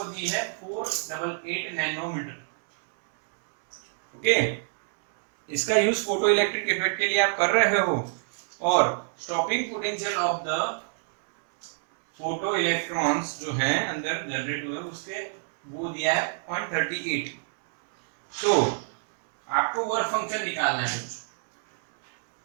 दी है 488 नैनोमीटर। ओके, इसका यूज फोटो इलेक्ट्रिक इफेक्ट के लिए आप कर रहे हो और stopping potential of the photo electrons जो हैं अंदर जनरेट हुए उसके वो दिया है 0.38। तो आपको वर्क फंक्शन निकालना है।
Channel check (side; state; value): left; silent; digital silence